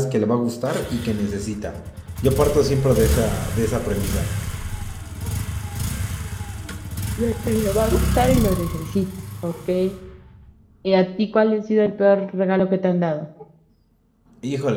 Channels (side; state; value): both; identical; correlation 1.00